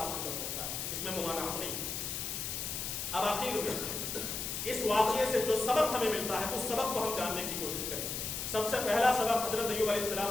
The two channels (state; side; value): noise; left; hiss, 3 dB below the sound